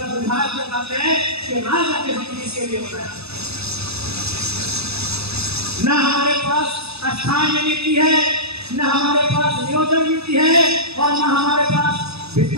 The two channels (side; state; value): left; late; 0.79 ms